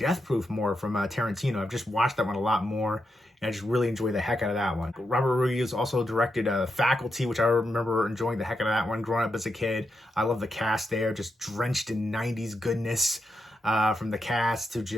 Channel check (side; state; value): both; normal; correlation 0.85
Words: Proof more from Tarantino. I've just watched that one a lot more, and I just really enjoy the heck out of that one. Robert Rodriguez also directed Faculty, which I remember enjoying the heck out of that one growing up as a kid. I love the cast there, just drenched in 90s goodness, from the cast to